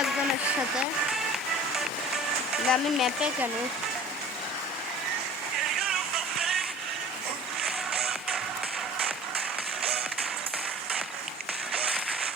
একজনের সাথে। আমি ম্যাপে কেন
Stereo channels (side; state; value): both; normal; correlation 0.44